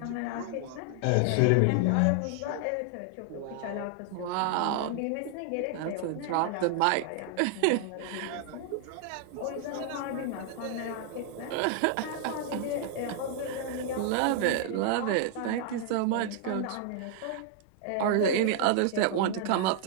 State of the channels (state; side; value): different; both; correlation 0.00